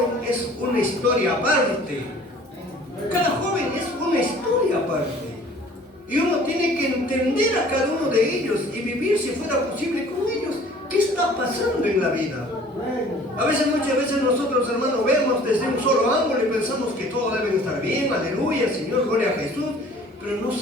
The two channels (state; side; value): normal; both; correlation 0.50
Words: es una historia aparte. Cada joven es una historia aparte. Y uno tiene que entender a cada uno de ellos y vivir, si fuera posible, con ellos. ¿Qué está pasando en la vida? Muchas veces nosotros, hermanos, vemos desde un solo ángulo y pensamos que todo debe estar bien, aleluya, Señor, gloria a Jesús. Pero no